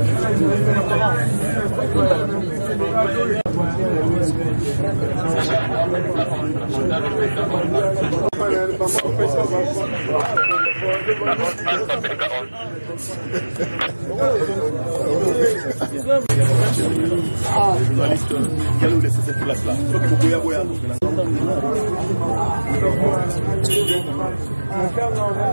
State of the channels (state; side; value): inverted; both; correlation -1.00